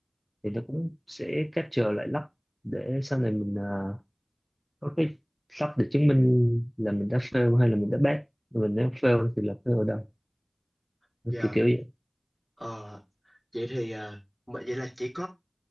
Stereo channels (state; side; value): identical; both; correlation 1.00